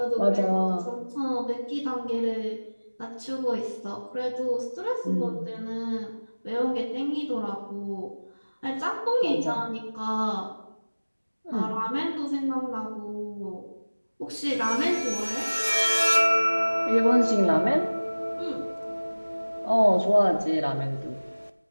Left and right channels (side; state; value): both; inverted; correlation -1.00